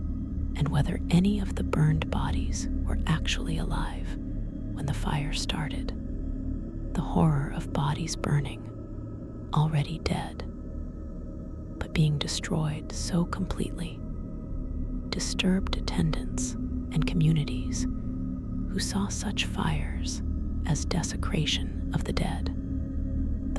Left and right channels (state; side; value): identical; both; correlation 1.00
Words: whether any of the burned bodies were actually alive when the fire started. The horror of bodies burning, already dead, but being destroyed so completely, disturbed attendants and communities who saw such fires as desecration of the dead.